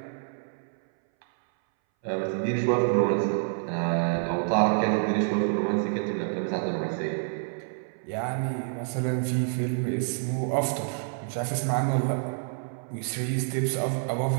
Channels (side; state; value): left; silent; 60 dB below the other